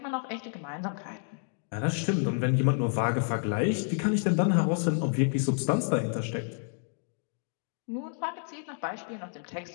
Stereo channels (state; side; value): silent; right; 58 dB below the other